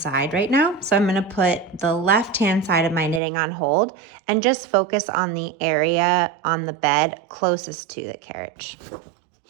right now, so I'm going to put the left-hand side of my knitting on hold and just focus on the area on the bed closest to the carriage.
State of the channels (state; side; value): drops out; left; at 3.2 s